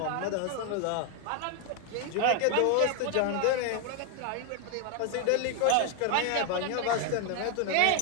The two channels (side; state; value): both; different; correlation 0.01